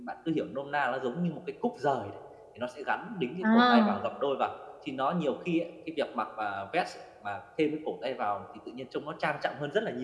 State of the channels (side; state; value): both; identical; correlation 1.00